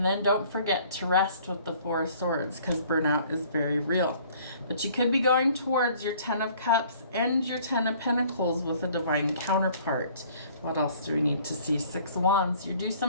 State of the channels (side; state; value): both; inverted; correlation -0.56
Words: then don't forget to rest with the Four of Swords, because burnout is very real. But you could be going towards your Ten of Cups and your Ten of Pentacles with a divine counterpart. What else do we need to see? Six of Wands. You do